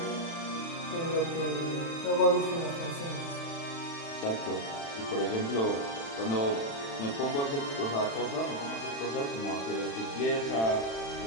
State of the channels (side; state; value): right; late; 36 ms